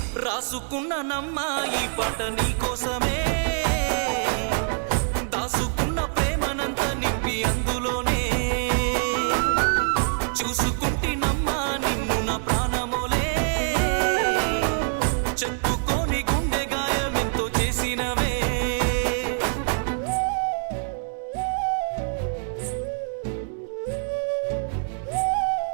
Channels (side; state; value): left; silent; 62 dB below the other